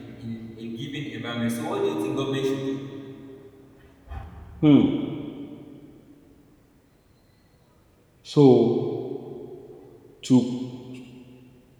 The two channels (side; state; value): both; identical; correlation 1.00